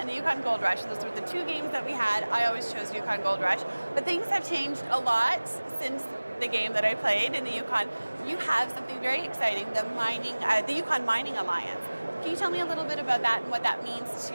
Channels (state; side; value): inverted; both; correlation -1.00